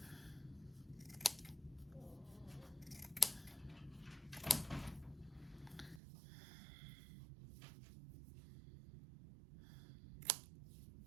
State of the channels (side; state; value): left; drops out; at 6.0 s